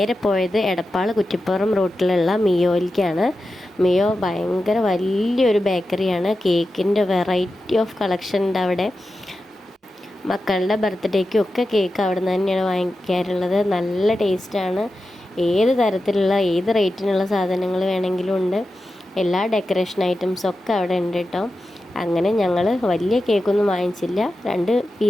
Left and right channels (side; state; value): both; normal; correlation 0.92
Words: പോയത് എടപ്പാൾ കുറ്റിപ്പുറം റൂട്ടിലുള്ള മിയോയിലേക്കാണ്. മിയോ ഭയങ്കര വലിയൊരു ബേക്കറിയാണ്. കേക്കിൻ്റെ വെറൈറ്റി ഓഫ് കളക്ഷൻ ഉണ്ട് അവിടെ. മക്കളുടെ ബർത്ത്ഡേക്കും ഒക്കെ കേക്ക് അവിടെ നിന്ന് തന്നെയാണ് വാങ്ങിക്കാറുള്ളത്. നല്ല ടേസ്റ്റാണ്. ഏത് തരത്തിലുള്ള ഏത് റേറ്റിനുള്ള സാധനങ്ങൾ വേണമെങ്കിലും ഉണ്ട്. എല്ലാ ഡെക്കറേഷൻ ഐറ്റംസൊക്കെ അവിടെ ഉണ്ട് കേട്ടോ. അങ്ങനെ ഞങ്ങൾ വലിയ കേക്കൊന്നും വാങ്ങിച്ചില്ല, 2